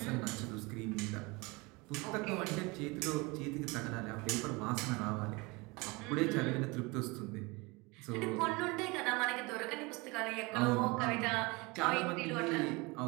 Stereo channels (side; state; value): left; quieter; 25.6 dB